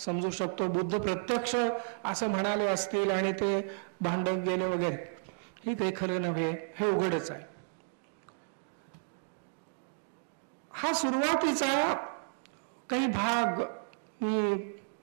शकतो. बुद्ध प्रत्यक्ष असं म्हणाले असतील आणि ते भांडत गेले वगैरे, हे काही खरं नव्हे, हे उघडच आहे. हा सुरुवातीचा काही भाग मी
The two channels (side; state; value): left; silent; digital silence